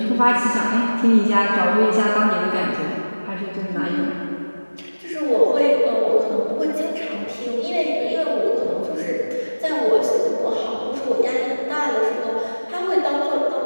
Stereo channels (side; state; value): both; inverted; correlation -1.00